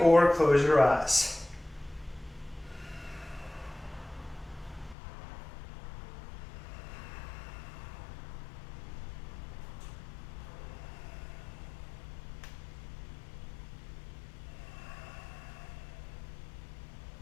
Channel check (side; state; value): right; drops out; at 5.0 s